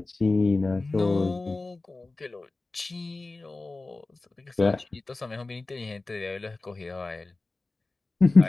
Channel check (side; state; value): right; quieter; 3.3 dB